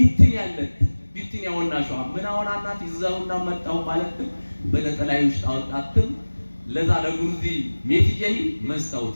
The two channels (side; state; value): both; inverted; correlation -1.00